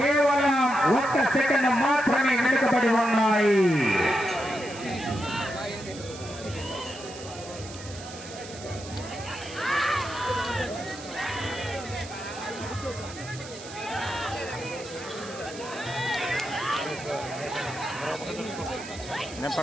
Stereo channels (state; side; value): noise; right; hiss, 15 dB below the sound